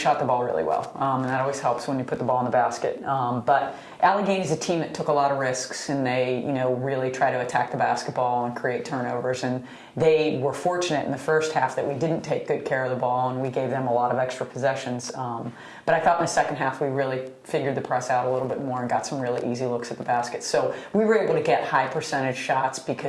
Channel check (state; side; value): identical; both; correlation 1.00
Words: the ball really well, and that always helps when you put the ball in the basket. But Allegheny is a team that took a lot of risks, and they, really try to attack the basketball and create turnovers. And they were fortunate in the first half that we didn't take good care of the ball, and we gave them a lot of extra possessions. But I thought in the second half we really figured the press out a little bit more and got some really easy looks at the basket. So we were able to get high percentage shots